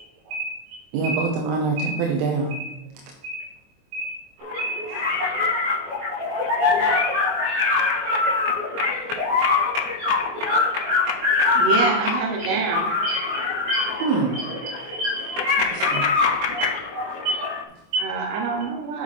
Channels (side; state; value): left; late; 24 ms